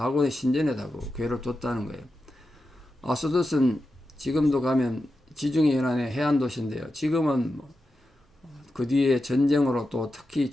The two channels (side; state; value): both; normal; correlation 0.90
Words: 신전에다가 교회를 뒀다는 거예요. 아스돗은 지금도 가면 지중해 연안의 해안 도시인데요. 지금은 그 뒤에 전쟁으로 또 특히